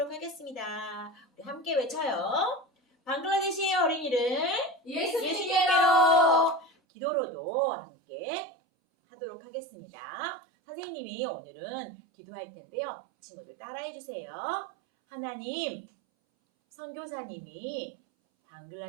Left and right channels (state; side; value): drops out; left; at 6.7 s